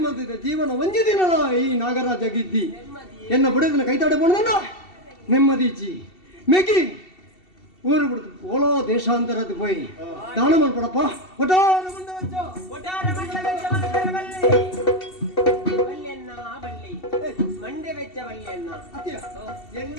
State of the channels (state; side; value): late; right; 2.7 ms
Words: ಜೀವನ ಒಂಜಿ ದಿನದ ಈ ನಾಗರಾಜ ಗಿದ್ದಿ ಎನ್ನ ಬುಡದಿನ ಕೈತಾಡೆ ಬಂದ ನೆಮ್ಮದಿಜ್ಜಿ ಮೆಗಿ ಊರು ಬಿಡ್ತು ಓಲೋ ದೇಶಾಂತರದ ಪೋಯಿ ದಾನ ಮಾಡ್ಕೊಡಪ್ಪ ಒಟ್ಟಾರ ಮಂಡ